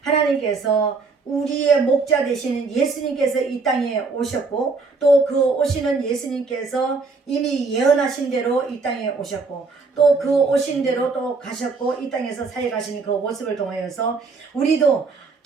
하나님께서 우리의 목자 되시는 예수님께서 이 땅에 오셨고 또 그 오시는 예수님께서 이미 예언하신 대로 이 땅에 오셨고 또 그 오신 대로 또 가셨고 이 땅에서 사역하신 그 모습을 통하여서 우리도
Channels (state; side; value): quieter; left; 4.3 dB